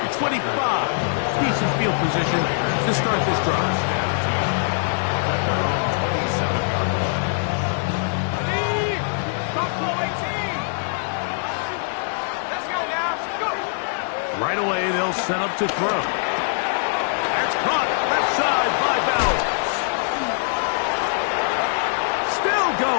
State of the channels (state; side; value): silent; right; 62 dB below the other